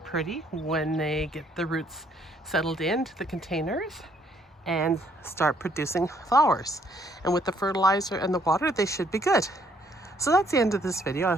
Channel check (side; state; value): both; normal; correlation 0.67